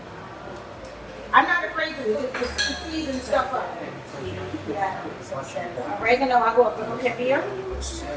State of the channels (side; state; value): both; identical; correlation 1.00